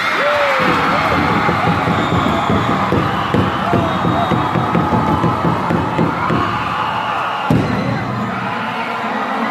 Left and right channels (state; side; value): identical; both; correlation 1.00